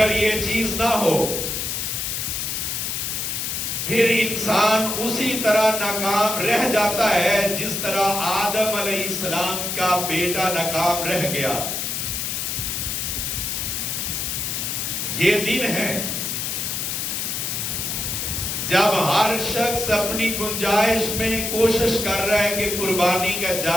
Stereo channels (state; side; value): noise; left; hiss, 2 dB below the sound